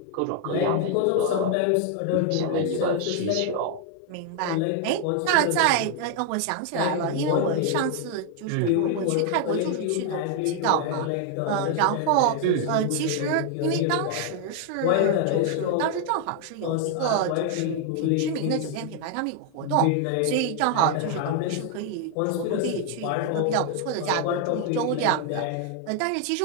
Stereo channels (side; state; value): both; different; correlation 0.00